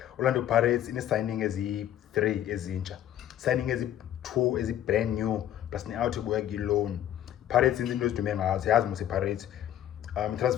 Orlando Pirates ine signing ezi3 ezintsha, signing ezi2 ezi brand new plus ne out ebuya ki loan. Pirates into ezidume ngazo yazi mose Pirates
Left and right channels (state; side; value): quieter; right; 11.5 dB